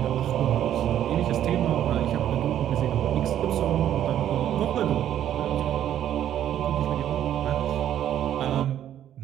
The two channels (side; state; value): left; quieter; 11.0 dB